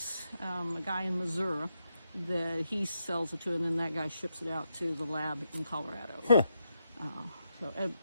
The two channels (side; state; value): both; inverted; correlation -0.83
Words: a guy in Missouri, that he sells it to, and then that guy ships it out to the lab in Colorado.